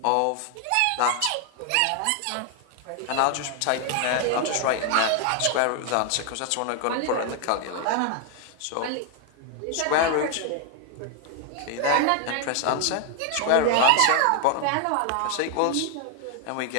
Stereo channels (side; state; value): both; different; correlation 0.00